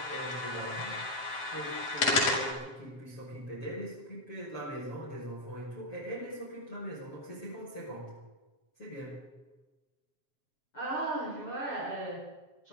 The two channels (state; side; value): late; right; 7.4 ms